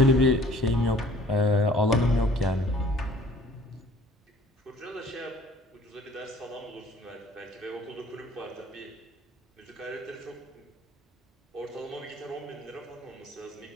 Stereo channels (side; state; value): both; normal; correlation 0.53